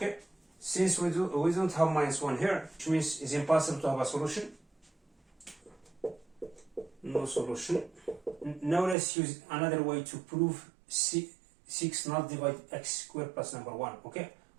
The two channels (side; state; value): left; drops out; at 9.0 s